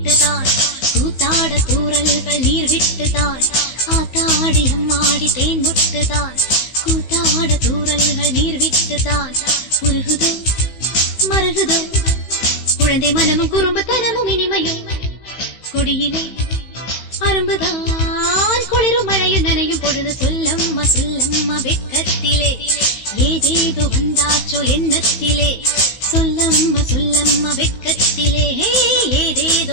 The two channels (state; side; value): late; right; 16 ms